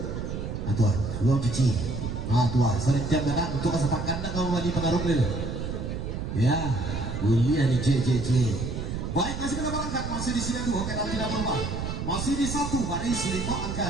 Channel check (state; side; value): noise; right; rumble, 5 dB below the sound